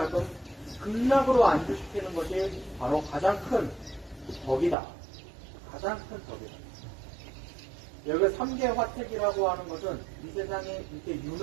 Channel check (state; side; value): drops out; left; at 4.8 s